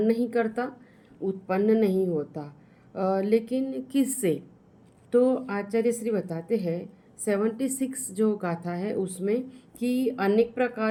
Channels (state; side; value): identical; both; correlation 1.00